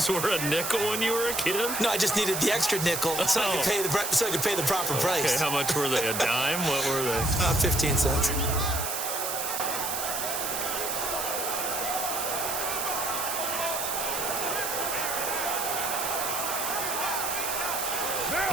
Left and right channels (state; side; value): noise; right; hiss, 2 dB below the sound